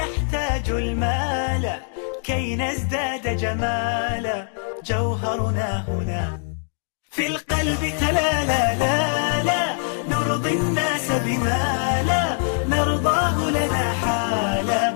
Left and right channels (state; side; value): silent; right; 58 dB below the other